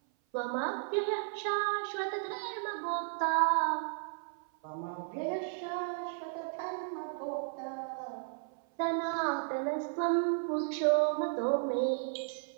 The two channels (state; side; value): silent; left; 55 dB below the other